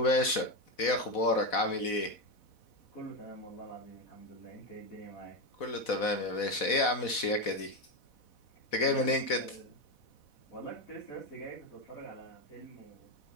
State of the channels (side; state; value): right; late; 4.1 ms